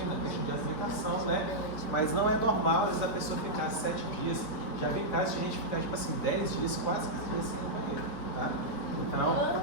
questão de alimentação, né? Mas não é normal, às vezes, a pessoa ficar 7 dias. Já vi casos de gente ficar, tipo assim, 10 dias, quase 15 dias sem ir no banheiro, tá?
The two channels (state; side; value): late; right; 4.6 ms